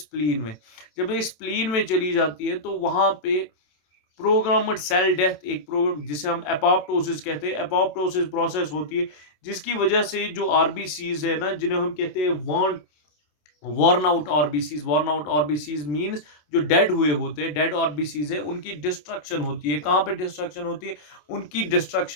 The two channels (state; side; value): late; right; 27 ms